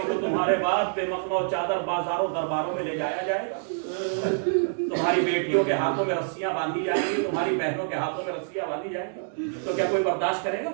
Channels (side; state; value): left; silent; digital silence